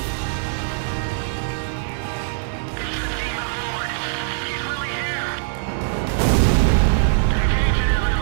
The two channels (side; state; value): left; silent; digital silence